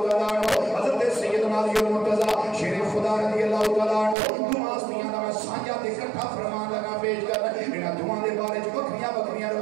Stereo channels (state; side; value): drops out; left; at 4.2 s